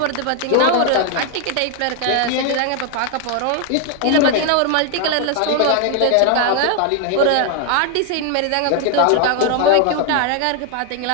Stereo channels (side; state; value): both; different; correlation 0.00